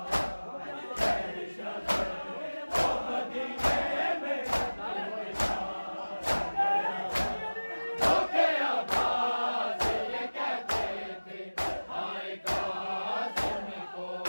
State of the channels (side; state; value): both; inverted; correlation -1.00